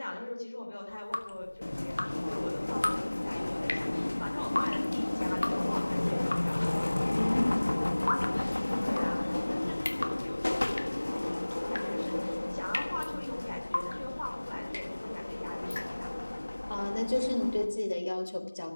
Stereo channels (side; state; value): both; inverted; correlation -1.00